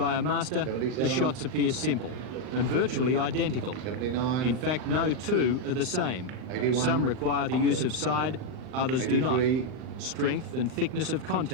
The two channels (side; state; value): left; late; 39 ms